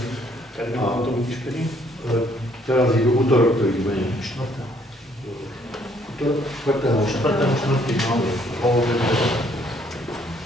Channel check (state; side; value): normal; both; correlation 0.65